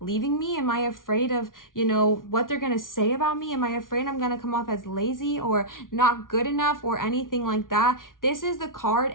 leaving me? Am I afraid of, what they're going to say about me? Am I afraid I'm going to come off as lazy or not good enough or anything like that? This is the card,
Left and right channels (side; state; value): right; late; 0.89 ms